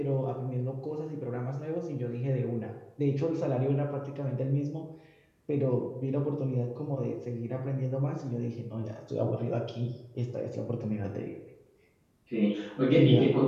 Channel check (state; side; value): identical; both; correlation 1.00